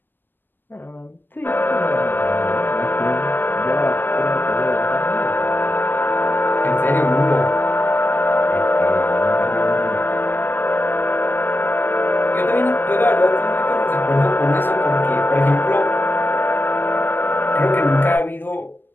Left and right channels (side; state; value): right; late; 0.095 ms